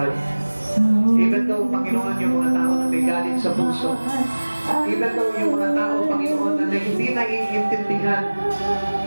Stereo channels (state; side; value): inverted; both; correlation -1.00